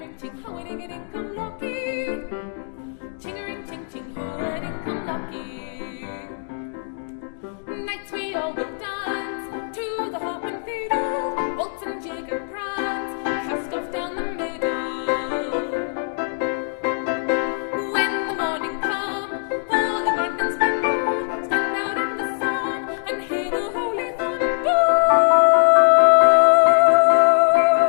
ching, ho-a-ding-a-ding, come lucky. Ching-a-ring, ching-ching, ho-a-ding, come lucky. Nights we all will dance to the harp and fiddle, waltz and jig and prance, cast off down the middle. When the morning come, all in London splendor, stand out in the sun and hear the holy thunder.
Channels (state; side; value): silent; right; digital silence